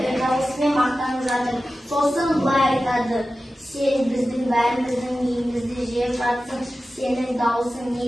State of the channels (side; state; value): both; normal; correlation 0.94